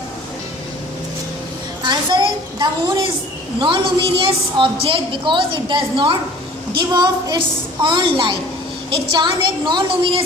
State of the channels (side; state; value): both; normal; correlation 0.48